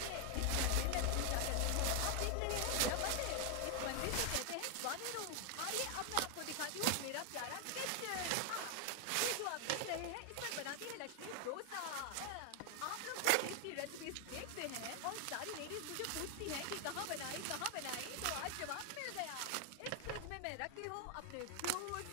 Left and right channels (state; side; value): different; both; correlation 0.00